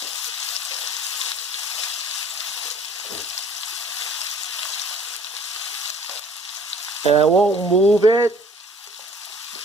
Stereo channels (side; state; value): both; normal; correlation 0.53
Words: And I won't move it,